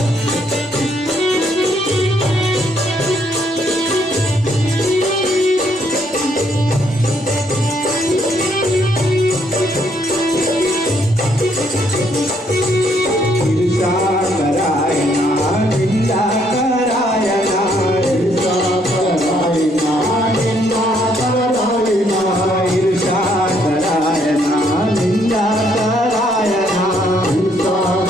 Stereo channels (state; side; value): normal; both; correlation 0.70